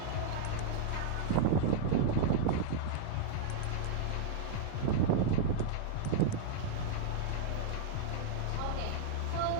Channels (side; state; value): both; different; correlation -0.01